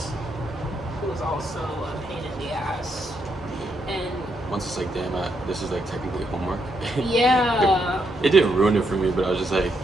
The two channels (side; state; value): both; normal; correlation 0.78